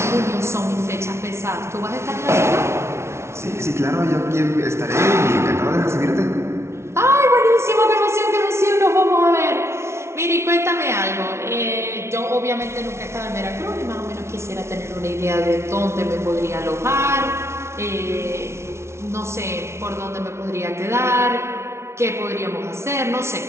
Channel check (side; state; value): left; late; 0.13 ms